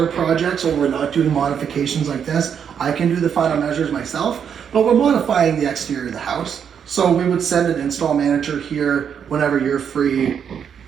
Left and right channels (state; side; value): quieter; left; 7.8 dB